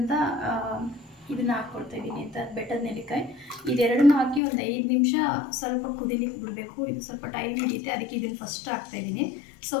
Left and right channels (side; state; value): right; drops out; at 4.4 s